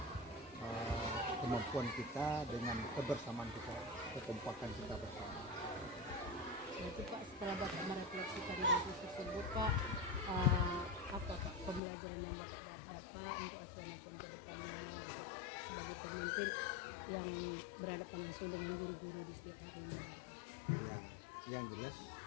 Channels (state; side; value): drops out; right; at 11.8 s